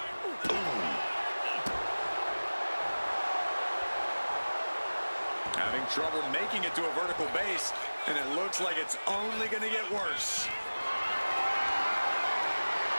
Having trouble making it to a vertical base, and it looks like it's only going to get worse.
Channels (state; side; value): inverted; both; correlation -1.00